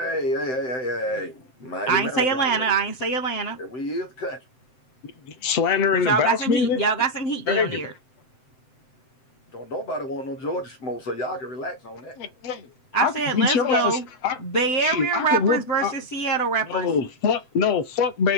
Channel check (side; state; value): right; late; 7.8 ms